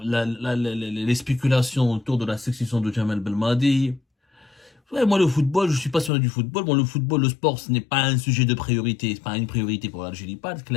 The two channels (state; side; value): drops out; right; at 6.1 s